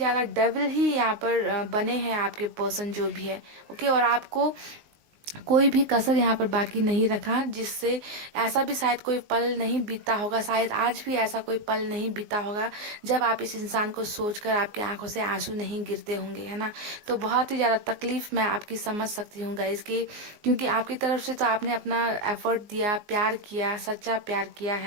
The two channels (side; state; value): left; late; 19 ms